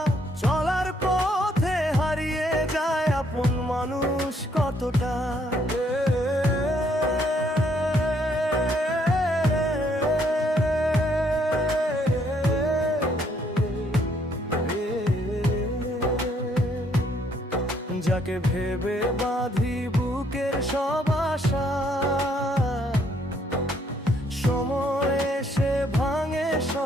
চলার পথে হারিয়ে যায় আপন মানুষ কতটা। যাকে ভেবে বাঁধি বুকের সব আশা, সময় এসে ভাঙে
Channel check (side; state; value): both; normal; correlation 0.68